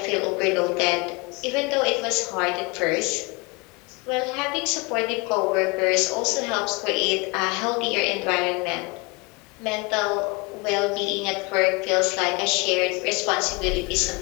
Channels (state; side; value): quieter; right; 27.5 dB